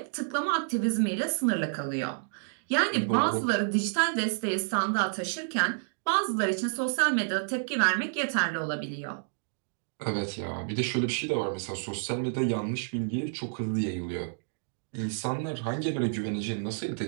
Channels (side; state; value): left; silent; digital silence